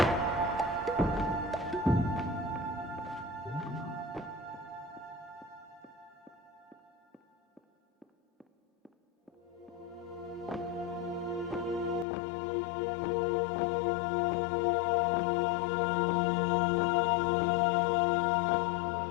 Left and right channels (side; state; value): right; drops out; at 12.1 s